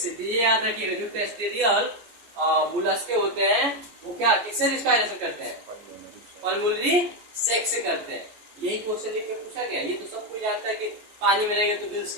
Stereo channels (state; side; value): late; left; 14 ms